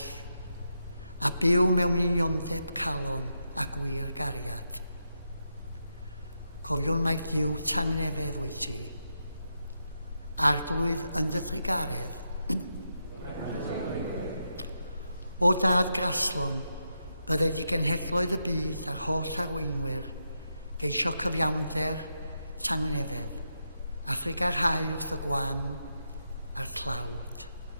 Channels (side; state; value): both; inverted; correlation -0.85